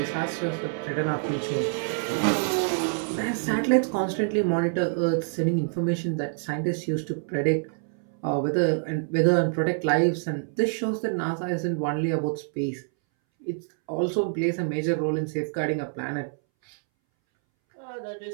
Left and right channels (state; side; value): silent; left; 60 dB below the other